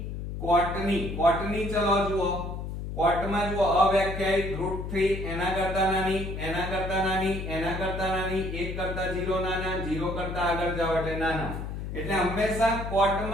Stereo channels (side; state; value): left; noise; hum, 6 dB below the sound